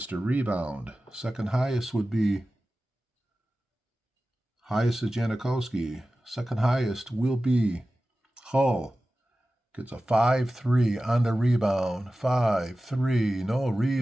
to rebound. Second highest would be. Highest is Janikowski. Second highest will be Hull. Gets a 5-3 on the rebound. 5-3. No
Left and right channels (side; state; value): both; normal; correlation 0.95